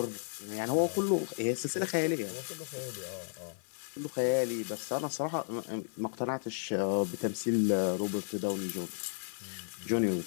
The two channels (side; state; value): right; silent; digital silence